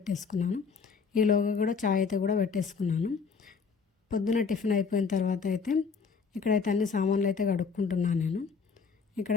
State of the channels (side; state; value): right; quieter; 5.5 dB